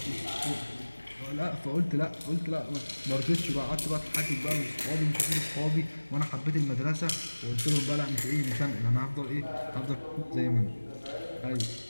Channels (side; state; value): both; inverted; correlation -1.00